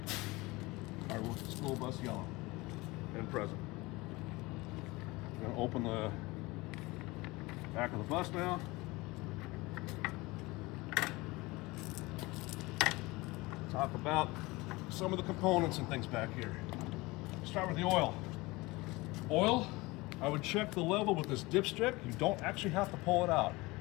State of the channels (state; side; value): quieter; right; 22.3 dB